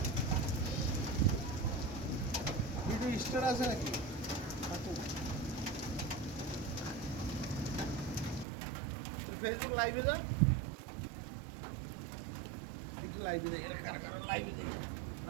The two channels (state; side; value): drops out; left; at 8.5 s